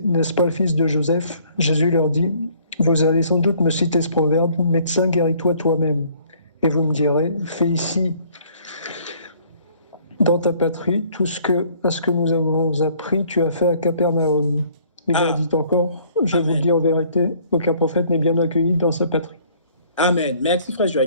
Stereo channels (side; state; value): both; inverted; correlation -0.59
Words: « N'est-ce pas le fils de Joseph ?» Jésus leur dit « Vous allez sans doute me citer ce proverbe, médecin, guéris-toi toi-même. Et vous me direz, fais ici, dans ta patrie, tout ce que nous avons appris, tu as fait à Capernaum. » Il leur dit encore, je vous le dis en vérité, aucun prophète n'est bien accueilli dans sa patrie. Amen. Merci, frère